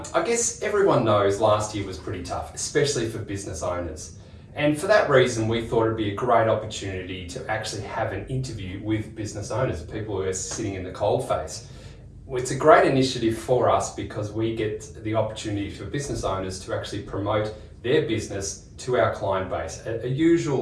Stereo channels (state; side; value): identical; both; correlation 1.00